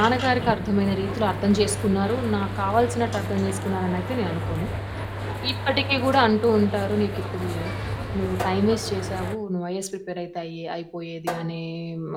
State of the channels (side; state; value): both; identical; correlation 1.00